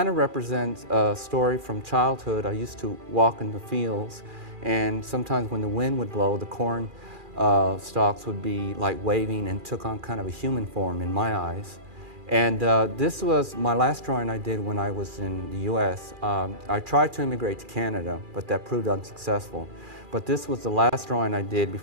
of represents a story from childhood. I used to walk in the fields, and sometimes when the wind would blow, the corn stalks would be like waving and took on kind of a human form in my eyes. And this was my last drawing I did when I was in the US. I tried to immigrate to Canada, but that proved unsuccessful. But this was the last drawing I did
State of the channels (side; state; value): left; late; 2.4 ms